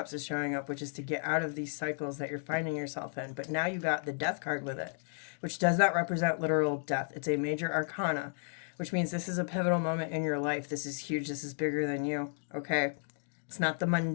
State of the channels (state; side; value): silent; right; 56 dB below the other